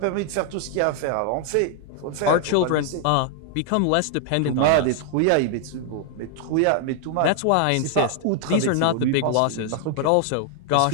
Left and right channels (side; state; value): both; different; correlation 0.00